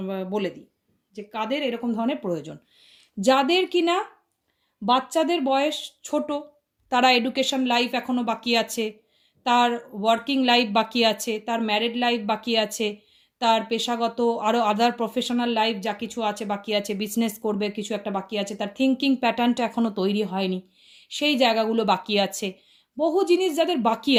বলে দিই যে কাদের এরকম ধরনের প্রয়োজন। যাদের কিনা বাচ্চাদের বয়স ছোট, তারা এডুকেশন লাইফ এখনও বাকি আছে, তার ওয়ার্কিং লাইফ বাকি আছে, তার ম্যারিড লাইফ বাকি আছে, তার পেশাগত আরও আদার প্রফেশনাল লাইফ যা কিছু আছে বাকি আছে, বিজনেস করবে কিছু একটা বাকি আছে, তার থিঙ্কিং প্যাটার্নটা এখনও তৈরি হয়নি, সেই জায়গাগুলো বাকি আছে। বহু জিনিস যাদের বাকি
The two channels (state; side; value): identical; both; correlation 1.00